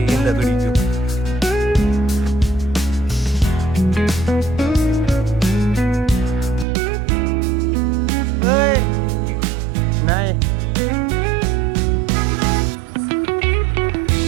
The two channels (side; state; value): left; drops out; at 6.7 s